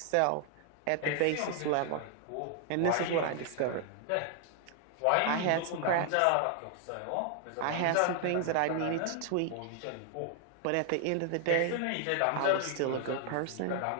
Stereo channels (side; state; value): both; different; correlation 0.00